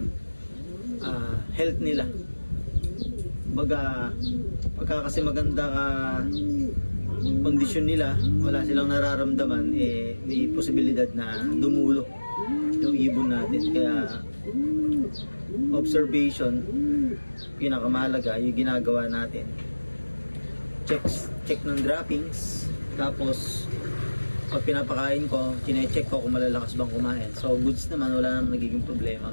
health nila. Pagka kasi maganda kondisyon nila, wala silang nararamdaman, may posibilidad na dumulo yung ibon natin. Kaya observation, pinakamahalaga yung ginagawa natin. Check ng droppings, tapos pag pinapakain ko, chine-check ko kung malalakas bang kumain. So goods naman, wala namang nagiging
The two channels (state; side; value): inverted; both; correlation -1.00